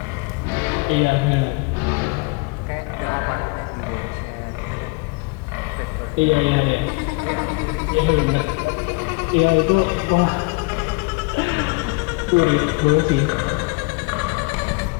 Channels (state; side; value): quieter; right; 28.0 dB